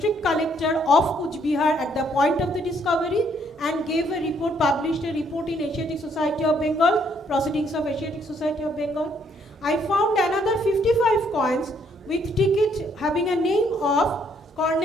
collector of Kuch Bihar at the point of the discovery, and gave a report, published a report in Asiatic Society of Bengal, Proceedings of Asiatic Society of Bengal. I found another 55 coins with ticket having a name of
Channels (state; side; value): normal; both; correlation 0.68